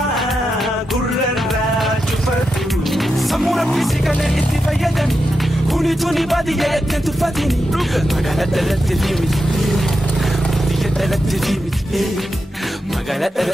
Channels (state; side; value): normal; both; correlation 0.87